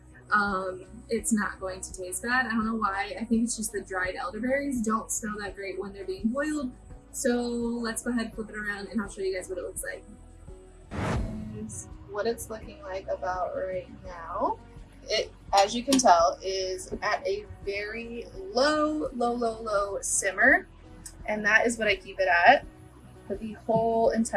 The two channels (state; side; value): identical; both; correlation 1.00